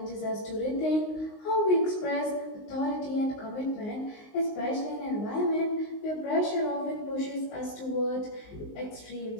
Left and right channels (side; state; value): right; late; 19 ms